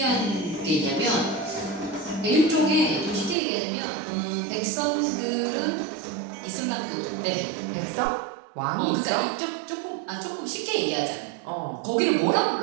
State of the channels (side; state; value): left; drops out; at 3.4 s